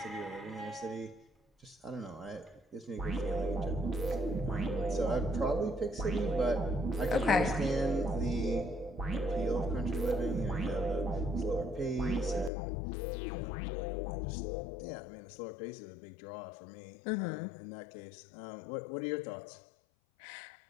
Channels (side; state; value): right; drops out; at 12.5 s